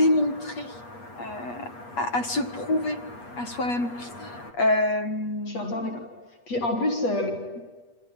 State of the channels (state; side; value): late; right; 8.3 ms